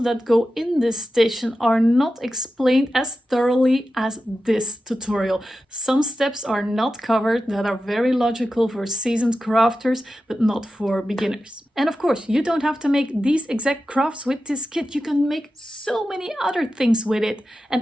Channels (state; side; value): normal; both; correlation 0.92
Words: that go in this station are not explained as thoroughly as this tutorial. Some steps are not covered that are very logical for seasoned crafters, but not for beginners. And of course, you don't have to make these exact crafts with this kit. You can make so many other things with it